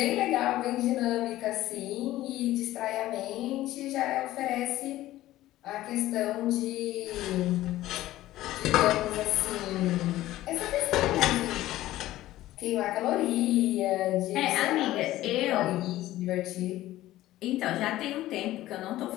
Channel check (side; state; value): right; quieter; 15.4 dB